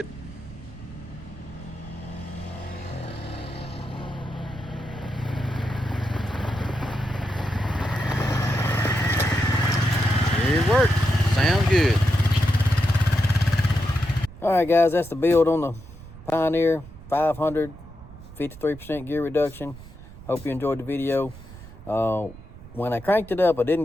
It works. Sounds good. All right, guys, that's the build on the Pioneer 500, 53% gear reduction. Hope you enjoyed the video. When I cranked it up, I didn't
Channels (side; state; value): right; noise; rumble, 17 dB below the sound